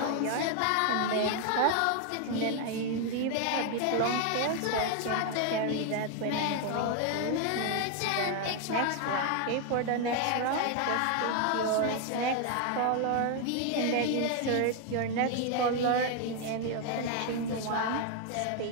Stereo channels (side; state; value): both; different; correlation 0.00